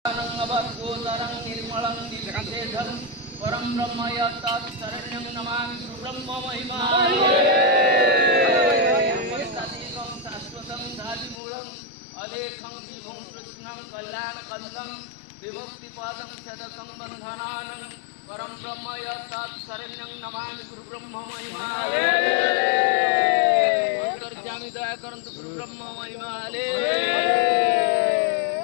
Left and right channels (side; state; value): right; drops out; at 11.4 s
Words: अवधूतरं निर्मलं निर्विशेषं परं ब्रह्म यत्तत्शरण्यं नमामि गुरुब्रह्म महिमानेकं शाश्वतं साधिमूलं अलेखं विभुं कृष्णं कल्याणकन्दं विमुक्तिपदं सदकं बन्धनानं परं ब्रह्म यत्तत्शरण्यं नमामि गुरुब्रह्म महिमाने अंतर्यामी दया करन्तु गुरुब्रह्म महिमाने